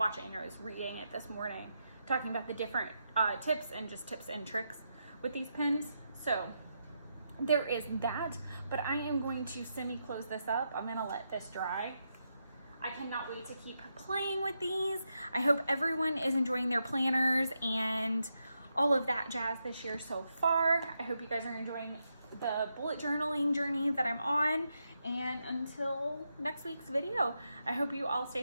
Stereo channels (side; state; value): both; inverted; correlation -0.84